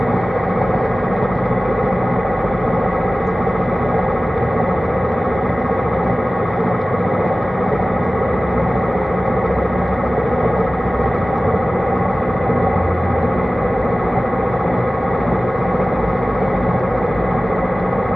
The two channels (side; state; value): both; normal; correlation 0.97